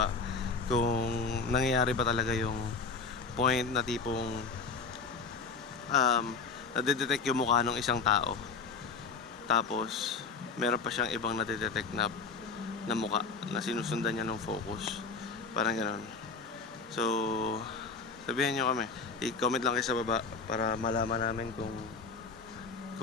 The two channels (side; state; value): right; quieter; 4.7 dB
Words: kung nangyayari ba talaga yung point na tipong nadedetect yung mukha ng isang tao, tapos meron pa siyang ibang nadedetect na mukha na sinusundan niya ng focus, parang gano'n. So sabihan nyo kami, i-comment lang kayo sa baba para malaman namin kung